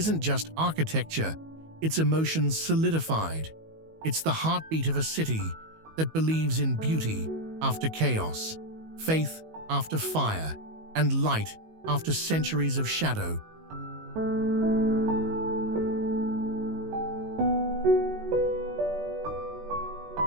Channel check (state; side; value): late; left; 19 ms